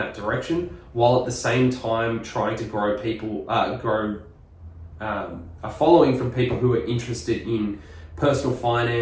direction, while at the same time trying to grow a following from people who are interested in personal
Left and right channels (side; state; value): both; identical; correlation 1.00